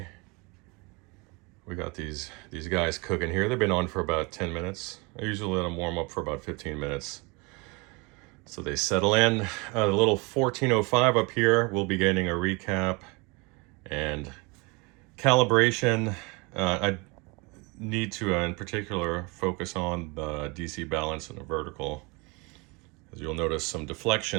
We got these guys cooking here. They've been on for about 10 minutes. I usually let them warm up for about 15 minutes. So they settle in. The little 1405 up here, we'll be getting a recap and calibration. I need to, in particular, focus on the DC balance and the vertical, as you'll notice some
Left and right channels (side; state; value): left; quieter; 28.0 dB